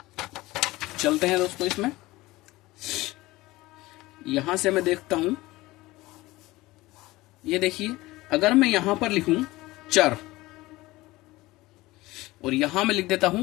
चलते हैं दोस्तों इसमें। यहां से मैं देखता हूं, ये देखिए, अगर मैं यहां पर लिखूं चर, और यहां मैं लिख देता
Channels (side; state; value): right; quieter; 19.4 dB